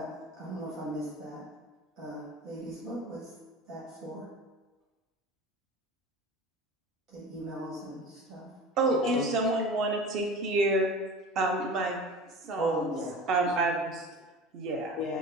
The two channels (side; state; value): both; normal; correlation 0.36